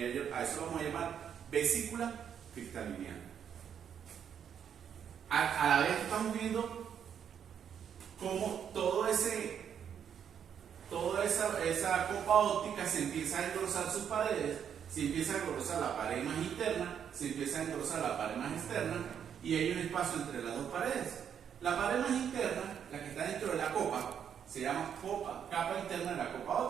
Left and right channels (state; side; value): quieter; left; 8.3 dB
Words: a eso lo vamos a llamar vesícula cristaliniana. A la vez estamos viendo cómo toda esa copa óptica se empieza a engrosar sus paredes, se empieza a engrosar la pared más interna, se empieza a engrosar la pared más externa, y hay un espacio entre las dos paredes. La pared más interna, la que está dentro de la copa, se llama capa interna de la copa